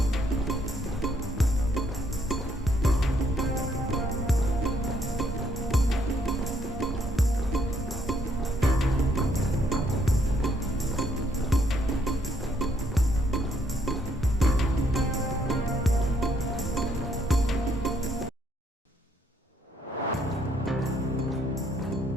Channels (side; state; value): both; normal; correlation 0.70